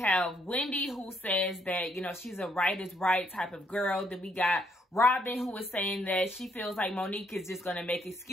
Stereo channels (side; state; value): both; normal; correlation 0.71